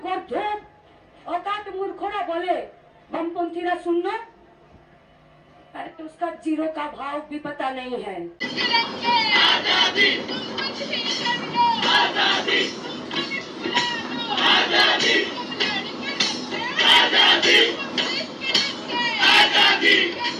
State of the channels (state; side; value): identical; both; correlation 1.00